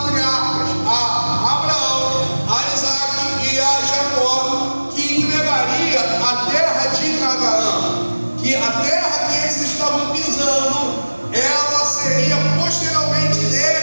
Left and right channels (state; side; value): inverted; both; correlation -1.00